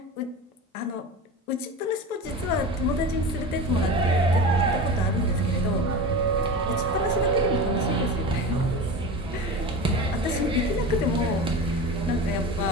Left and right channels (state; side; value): normal; both; correlation 0.30